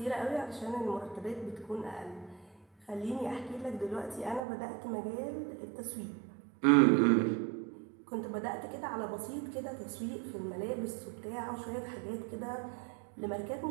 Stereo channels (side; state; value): left; drops out; at 4.4 s